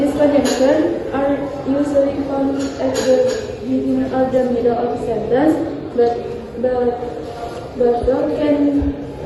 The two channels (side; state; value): both; identical; correlation 1.00